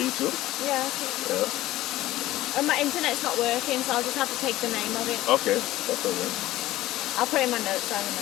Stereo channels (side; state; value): right; quieter; 15.9 dB